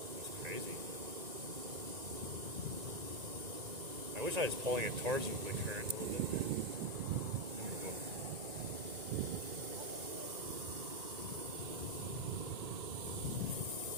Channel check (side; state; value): left; late; 1.9 ms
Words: It's crazy. I wish I was pulling it towards the current a little bit.